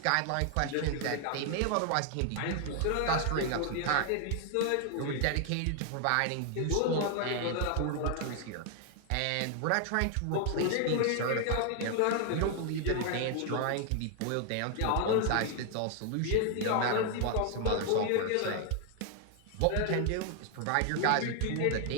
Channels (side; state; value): both; different; correlation 0.00